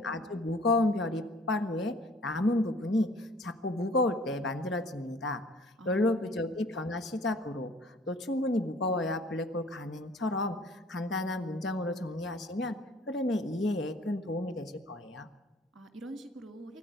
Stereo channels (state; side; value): normal; both; correlation 0.53